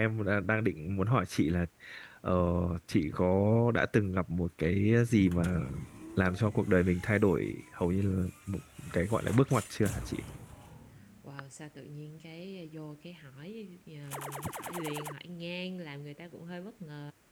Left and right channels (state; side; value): identical; both; correlation 1.00